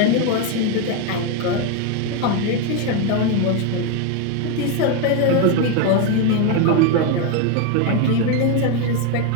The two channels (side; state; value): both; different; correlation 0.02